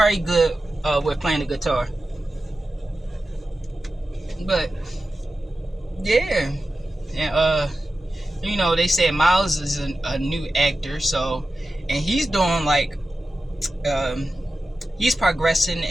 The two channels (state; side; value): normal; both; correlation 0.93